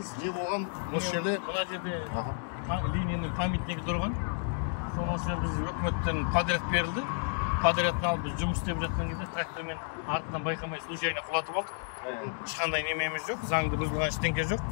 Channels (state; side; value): silent; right; 57 dB below the other